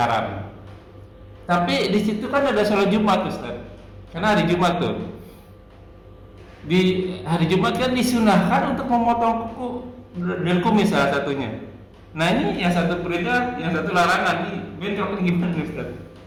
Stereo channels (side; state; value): both; identical; correlation 1.00